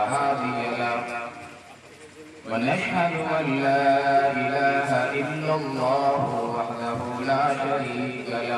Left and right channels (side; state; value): both; identical; correlation 1.00